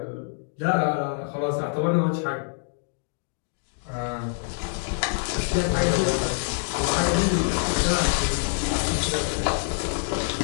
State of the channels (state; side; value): silent; right; 58 dB below the other